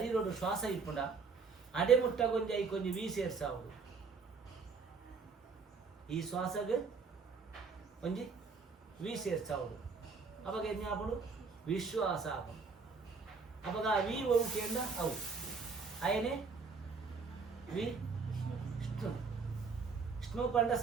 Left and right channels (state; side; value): quieter; left; 5.0 dB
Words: ಶ್ವಾಸ ಇಪ್ಪುಂಡ ಅಡೆ ಮುಟ್ಟ ಕೊಂಚ ಈ ಕೊಂಚ ವಿ ಸೇರ್ಸಾವುದು ಈ ಶ್ವಾಸಗೆ ಒಂಜಿ ವಿ ಸೇರ್ಸಾವುದು ಅವಾಗ ಏನು ಆಪಡು ವಿಶ್ವಾಸ ಆಪಡು ಅವಾಗ ವಿ ಅವು ಕೇಂದ್ರ ಅವು ಅಯನೇ ವಿ ವಿಷ್ಣು ಪಂಡ